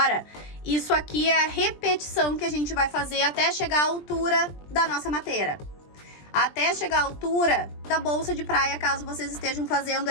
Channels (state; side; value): late; right; 20 ms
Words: isso aqui é a repetição que a gente vai fazer até chegar à altura da nossa mateira. Até chegar à altura da bolsa de praia, caso vocês estejam fazendo